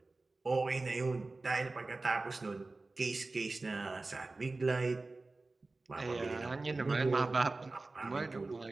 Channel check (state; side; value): quieter; left; 3.4 dB